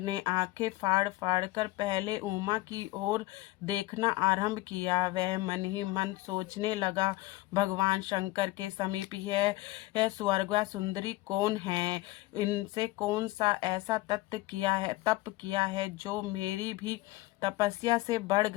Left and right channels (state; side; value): quieter; right; 19.2 dB